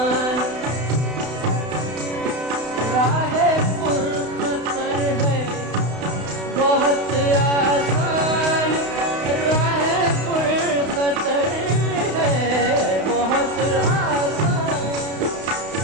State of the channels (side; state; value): left; late; 32 ms